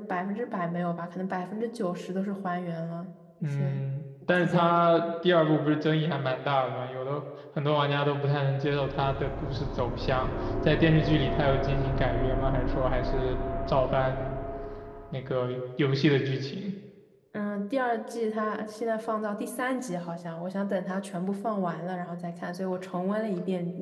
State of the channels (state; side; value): identical; both; correlation 1.00